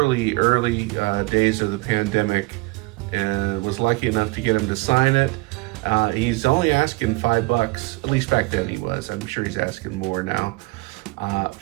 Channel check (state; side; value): quieter; left; 23.4 dB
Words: days of the pandemic, and was lucky enough to get him to sign it. He's only asking $5, at least back then he was. I'm sure he's asking more now.